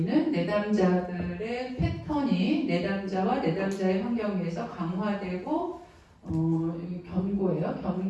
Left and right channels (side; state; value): both; identical; correlation 1.00